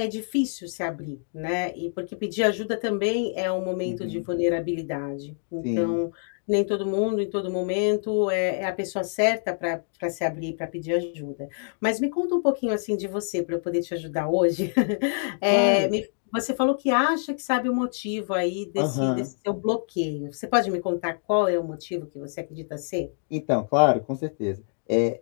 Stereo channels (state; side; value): silent; right; digital silence